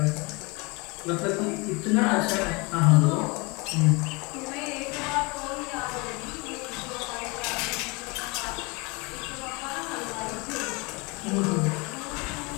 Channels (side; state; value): right; quieter; 27.7 dB